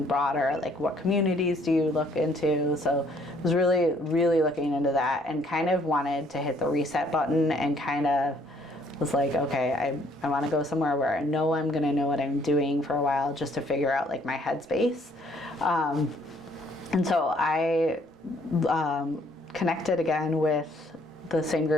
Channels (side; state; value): both; normal; correlation 0.63